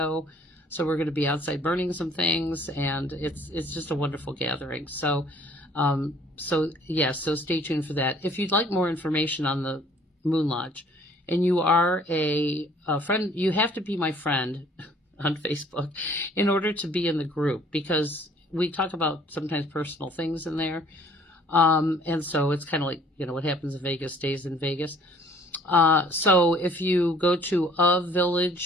So we're going to be outside burning some things, and it's just a wonderful gathering. So stay tuned for that. If you'd like more information on the Moon Lodge, and you are a friend, you have to be my friend on Facebook in order to be in the group, because we talk about sometimes personal things in there. And so it's kind of like, what happens in Vegas stays in Vegas. So if you go to A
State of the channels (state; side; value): normal; both; correlation 0.56